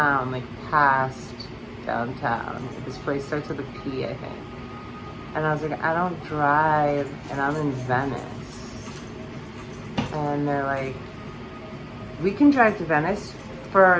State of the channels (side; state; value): both; identical; correlation 1.00